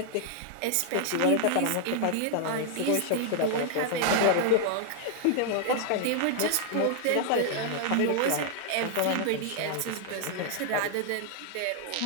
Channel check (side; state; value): both; different; correlation 0.00